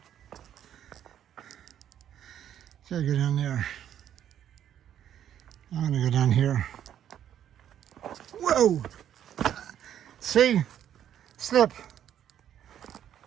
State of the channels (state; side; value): quieter; left; 10.2 dB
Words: So I go down there. I'm gonna go down here. Whoa! See? Slip.